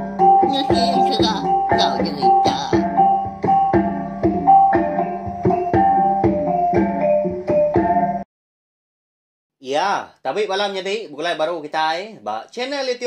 Nusi serah kau cerita. Ya, tapi malam jadi mulai baru kita ba channel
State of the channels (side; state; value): both; identical; correlation 1.00